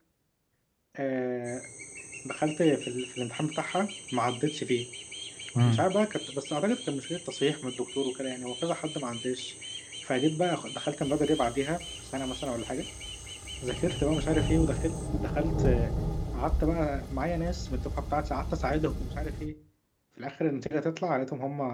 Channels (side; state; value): both; identical; correlation 1.00